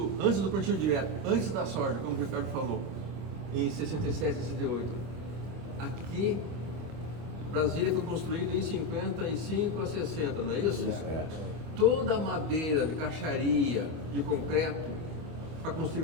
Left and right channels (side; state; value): left; late; 25 ms